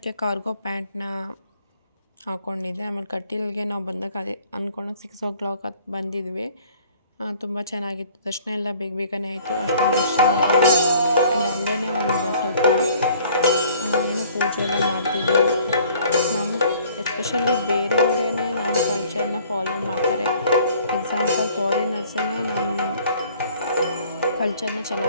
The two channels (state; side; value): inverted; both; correlation -0.54